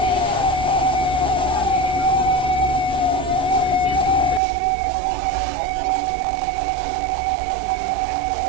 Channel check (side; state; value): left; drops out; at 4.4 s